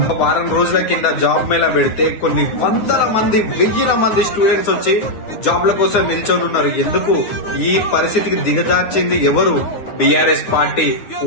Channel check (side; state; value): right; late; 9.5 ms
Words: వారం రోజుల కింద జాబ్ మేళా పెడితే కొన్ని వందల మంది, వెయ్యిల మంది స్టూడెంట్స్ వచ్చి జాబ్ల కోసం నిల్చొని ఉన్నారు. ఎందుకు ఈ పరిస్థితికి దిగజార్చింది ఎవరు? బీఆర్ఎస్ పార్టీ.